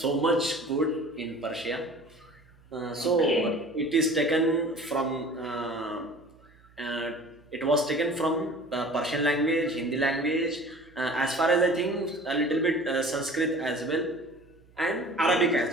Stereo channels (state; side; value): noise; right; hum, 28 dB below the sound